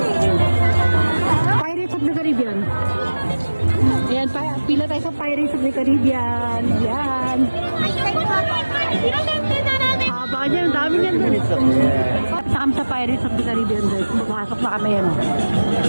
Pirates of the Caribbean. Ayan, pila tayo sa Pirates of the Caribbean. Ayan. Haba niyan, dami niyan. Saan sa Pirates of the Caribbean, guys. Papasok na kami yan.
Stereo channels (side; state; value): both; inverted; correlation -1.00